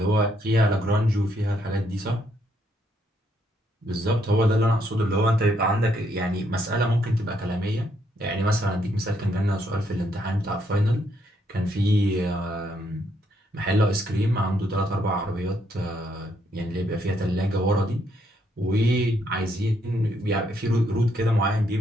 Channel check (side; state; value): both; normal; correlation 0.73